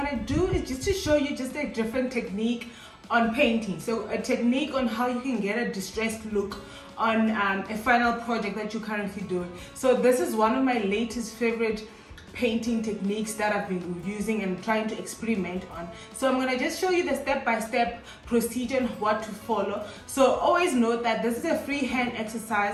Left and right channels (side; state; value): both; identical; correlation 1.00